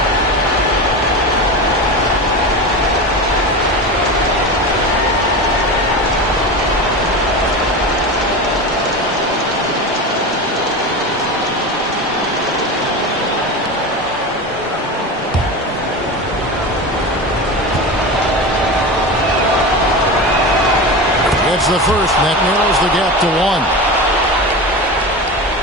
The first, and that narrows the gap to 1.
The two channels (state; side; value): normal; both; correlation 0.25